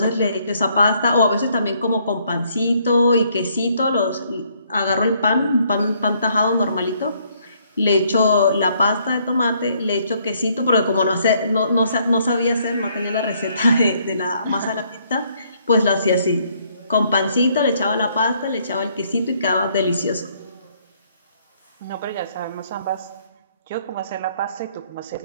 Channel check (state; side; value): inverted; both; correlation -0.68